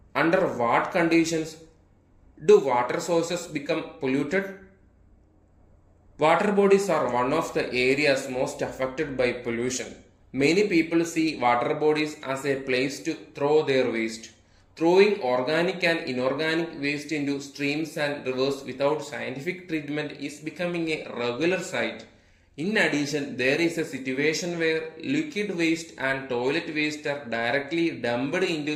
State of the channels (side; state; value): both; identical; correlation 1.00